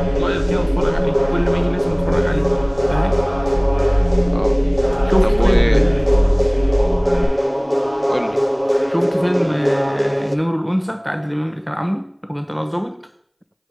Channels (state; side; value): identical; both; correlation 1.00